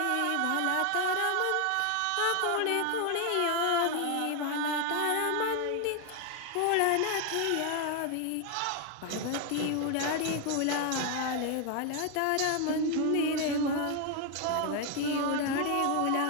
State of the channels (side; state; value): both; different; correlation 0.01